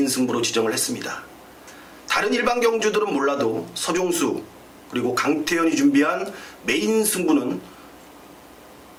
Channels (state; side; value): identical; both; correlation 1.00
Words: 승부로 지정을 했습니다. 다른 일반 경주들은 몰라도 서종수 그리고 강태현이 준비한 메인 승부는